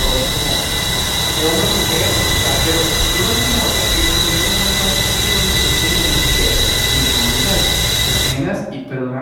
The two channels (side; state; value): both; identical; correlation 1.00